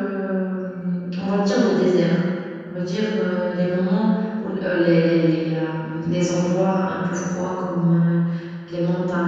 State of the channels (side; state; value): both; identical; correlation 1.00